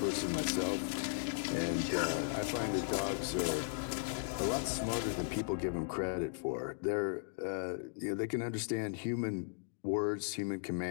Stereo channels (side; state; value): right; silent; digital silence